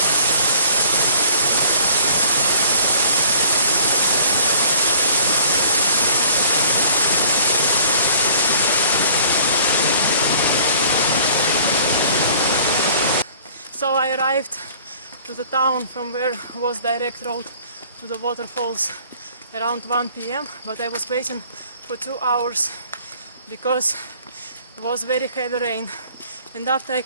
So I arrived to the town from where was direct road to the waterfalls around 1 p.m. but I was waiting for 2 hours because it was very heavy rain. And after I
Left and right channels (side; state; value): both; inverted; correlation -0.54